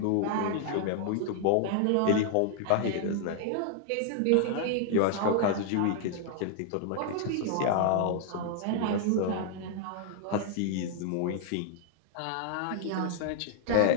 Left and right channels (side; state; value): both; different; correlation 0.00